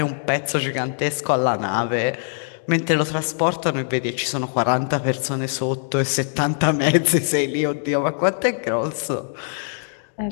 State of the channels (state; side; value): silent; right; digital silence